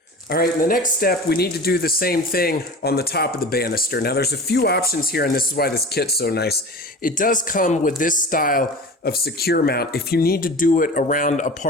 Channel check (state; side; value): normal; both; correlation 0.35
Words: All right, in the next step, we need to do the same thing on the top of the banister. Now, there's a few options here, and this is why this kit's so nice. It does come with this style of secure mount if you need to do it around a